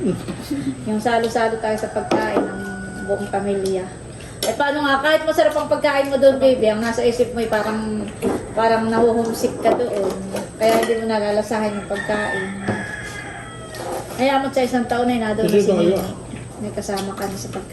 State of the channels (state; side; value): identical; both; correlation 1.00